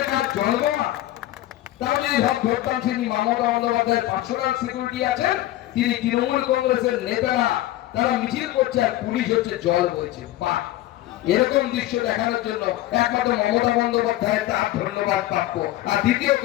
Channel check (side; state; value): right; quieter; 15.2 dB